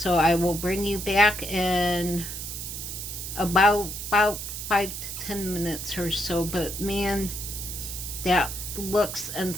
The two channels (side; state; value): right; noise; hiss, 7 dB below the sound